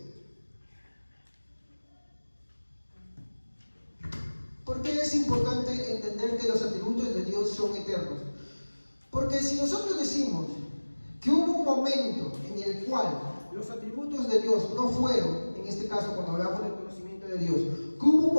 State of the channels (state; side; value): inverted; both; correlation -1.00